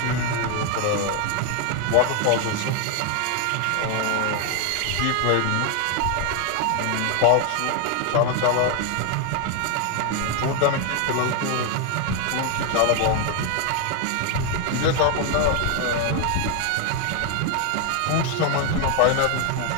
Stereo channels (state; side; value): different; both; correlation 0.01